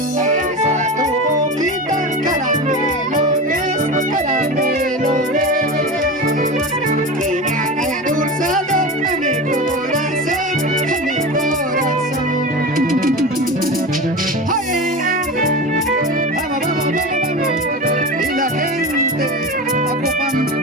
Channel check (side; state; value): both; normal; correlation 0.26